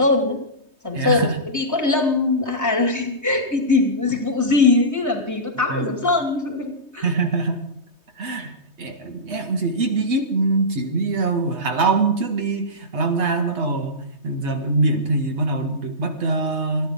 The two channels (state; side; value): late; left; 3.2 ms